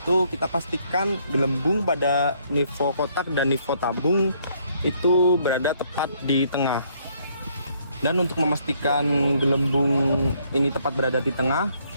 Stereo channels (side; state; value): both; inverted; correlation -0.68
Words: kita pastikan gelembung pada nivou kotak dan nivou tabung itu berada tepat di tengah. Dan untuk memastikan gelembung ini tepat berada di tengah,